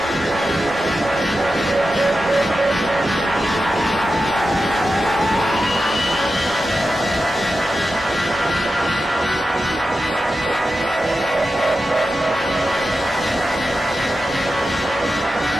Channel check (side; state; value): both; normal; correlation 0.91